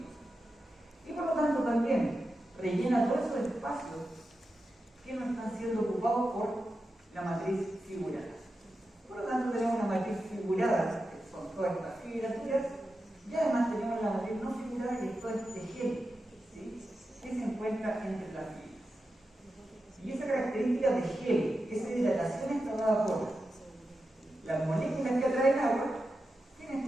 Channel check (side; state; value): both; normal; correlation 0.90